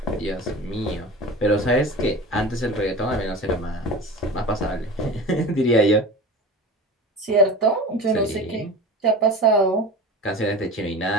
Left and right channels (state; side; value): normal; both; correlation 0.33